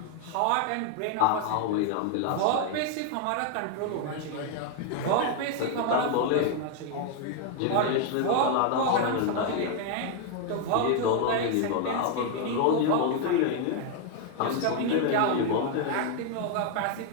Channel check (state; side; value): different; both; correlation 0.00